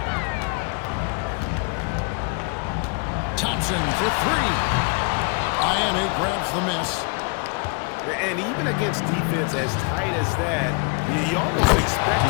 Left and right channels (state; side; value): quieter; right; 33.0 dB